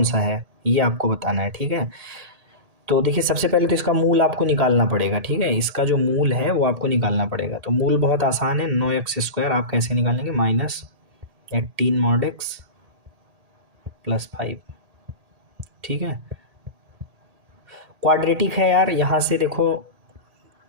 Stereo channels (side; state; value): left; late; 1.8 ms